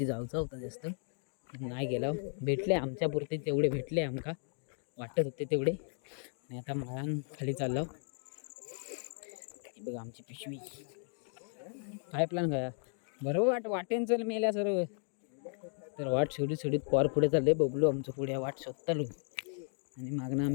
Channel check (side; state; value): right; silent; 54 dB below the other